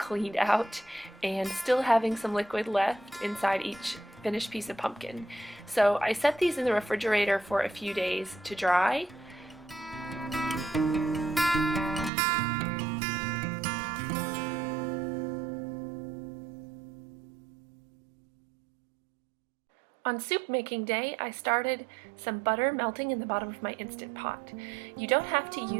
out and still having some liquid left inside each finished piece of pumpkin. So I set these in the refrigerator for a few days to dry. On soup making day, I started some butter melting in the bottom of my Instant Pot. You don't have to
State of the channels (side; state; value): left; drops out; at 12.1 s